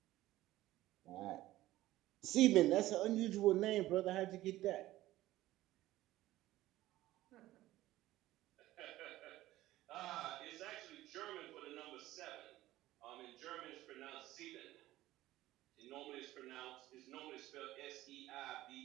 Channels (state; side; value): quieter; left; 15.9 dB